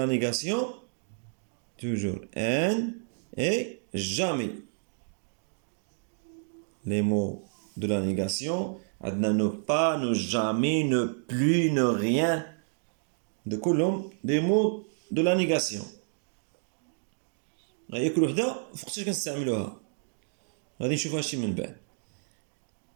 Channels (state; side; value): silent; left; 58 dB below the other